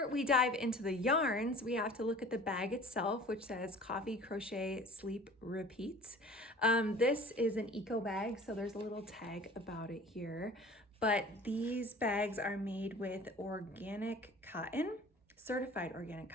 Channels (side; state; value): both; normal; correlation 0.44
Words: we dive into the yarns, we have to look at the bag itself, which says Coffee, Crochet, Sleep, Repeat. This is an eco bag, so there's a little tag about it here. But these bags are made with organic cotton, certified organic